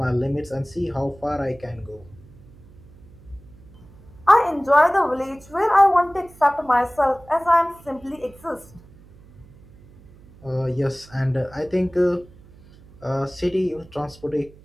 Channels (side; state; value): right; noise; hum, 24 dB below the sound